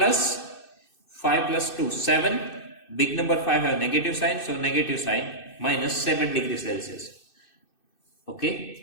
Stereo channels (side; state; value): right; late; 2.6 ms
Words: 5 plus 2, 7. Big number 5 have negative sign, so negative sign, minus 7 degrees Celsius.